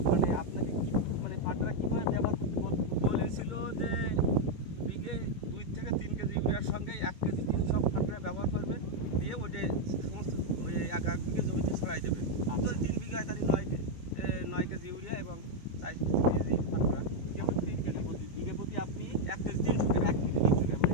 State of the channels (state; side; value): late; right; 2.2 ms